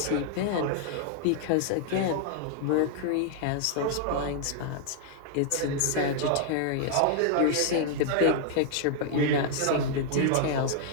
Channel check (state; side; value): different; both; correlation 0.00